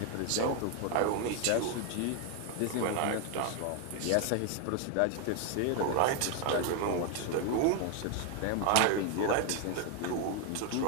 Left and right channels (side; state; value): both; different; correlation 0.01